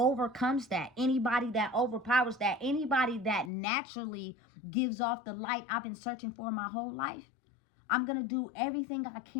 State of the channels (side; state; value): right; drops out; at 3.5 s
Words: that, anybody that overpowers that, anybody that naturally gives off the light I've been searching for my whole life, I'm going to do everything I